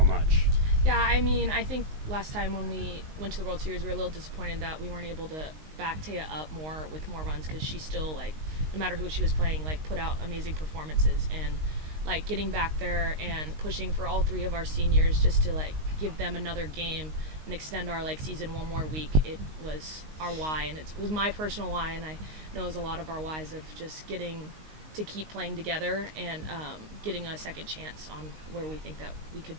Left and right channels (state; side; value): late; left; 19 ms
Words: much? Yeah, I mean, I think last time when we went to the World Series, we were a little disappointed that we weren't able to back Tayah up more with more runs, because she still, like, no matter who she was playing, like, put out amazing performances. And like getting back there and pushing for all 3 of our seniors just to like give them another game and extend our like season one more week, it was our why, and it was my personal why, and I know it was a lot of our whys of just getting to keep playing together and getting a second chance on where we think that we could